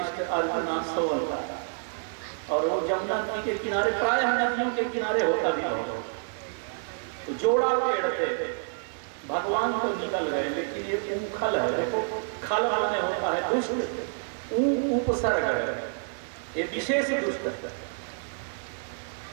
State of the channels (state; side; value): silent; left; 59 dB below the other